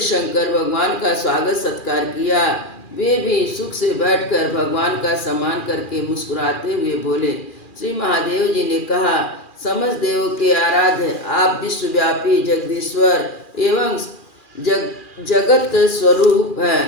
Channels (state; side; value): late; right; 2.4 ms